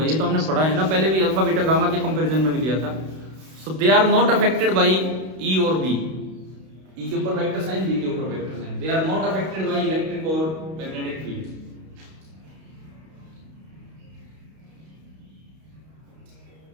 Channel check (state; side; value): late; left; 32 ms